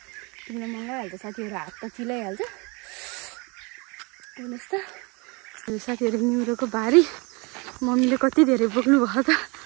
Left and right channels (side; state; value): left; quieter; 28.9 dB